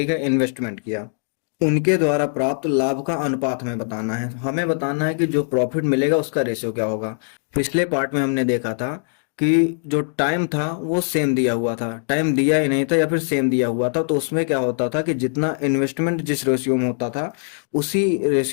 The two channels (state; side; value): silent; right; digital silence